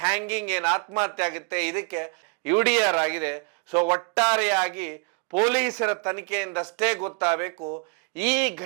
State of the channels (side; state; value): left; quieter; 34.0 dB